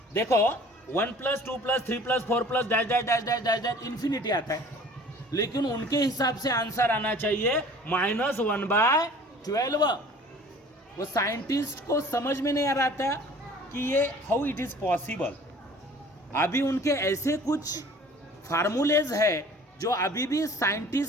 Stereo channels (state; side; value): normal; both; correlation 0.48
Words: देखो 1 + 2 + 3 + 4 + dash dash dash dash dash dash infinity आता है, लेकिन उनके हिसाब से आंसर आना चाहिए -1/12। वो साइंटिस्ट को समझ में नहीं आ रहा था कि ये हाउ इट इज पॉसिबल। अभी उनके ऐसे कुछ फार्मूलेज है जो अभी भी